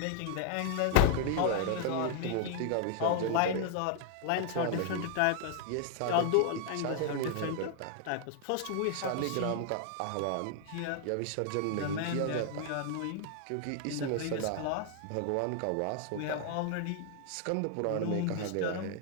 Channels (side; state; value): both; different; correlation 0.00